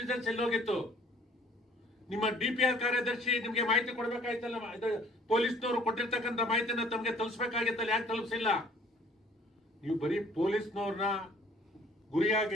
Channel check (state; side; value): normal; both; correlation 0.56